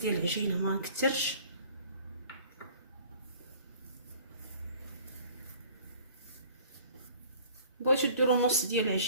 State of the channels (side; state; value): both; inverted; correlation -0.50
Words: العجينه ما نكثرش. بغيتو ديروا نص ديال